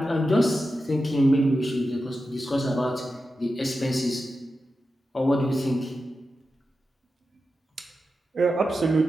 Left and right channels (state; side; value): normal; both; correlation 0.91